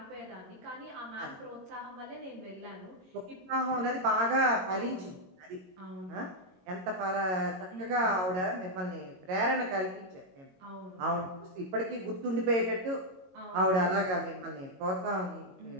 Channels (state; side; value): late; left; 22 ms